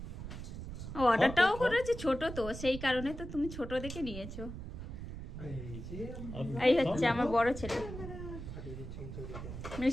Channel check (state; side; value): noise; right; rumble, 9 dB below the sound